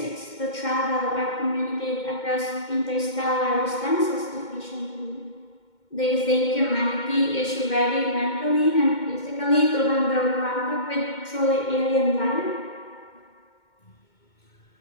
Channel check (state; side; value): late; right; 2.1 ms